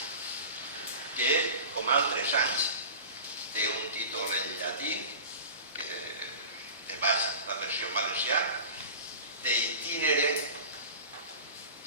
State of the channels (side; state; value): both; inverted; correlation -0.36